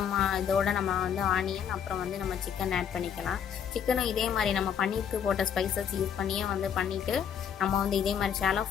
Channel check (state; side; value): quieter; right; 8.1 dB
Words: இதோட நம்ம வந்து ஆனியன் அப்புறம் வந்து நம்ம சிக்கன் ஆட் பண்ணிக்கலாம். சிக்கனும் இதே மாதிரி நம்ம பன்னீருக்கு போட்ட ஸ்பைசஸ் யூஸ் பண்ணியே வந்து பண்ணிவிட்டு நம்ம வந்து இதே மாதிரி ஷாலோ